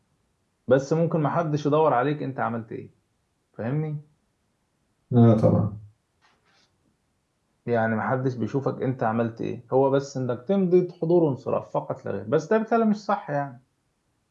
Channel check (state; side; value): identical; both; correlation 1.00